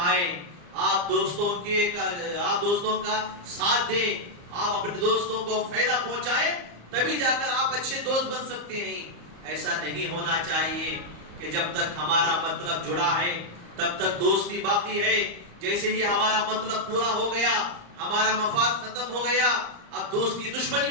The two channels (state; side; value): late; left; 34 ms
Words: آپ دوستوں کا ساتھ دیں، آپ اپنے دوستوں کو فائدہ پہنچائیں، تبھی جا کر آپ اچھے دوست بن سکتے ہیں۔ ایسا نہیں ہونا چاہیے کہ جب تک ہمارا مطلب جڑا ہے تب تک دوستی باقی ہے، جیسے ہی ہمارا مطلب پورا ہو گیا، ہمارا مفاد ختم ہو گیا، اب دوستی دشمنی